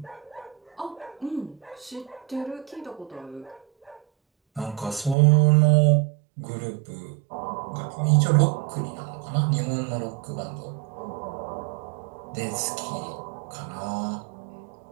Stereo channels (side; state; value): left; drops out; at 5.2 s